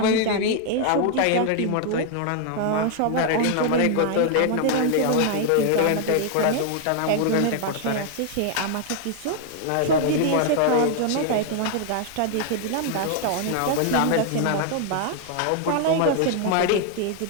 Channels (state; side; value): different; both; correlation 0.00